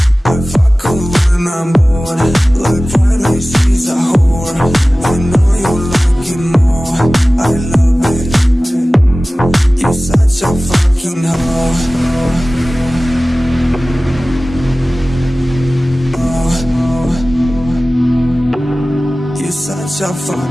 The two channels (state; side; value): normal; both; correlation 0.97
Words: I fuck her when I'm bored, like Friday she's a whore. I know you like it more, I love it. You're such a fucking hoe. You're such a